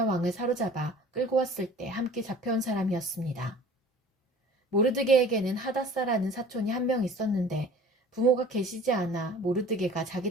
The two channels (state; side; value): normal; both; correlation 0.45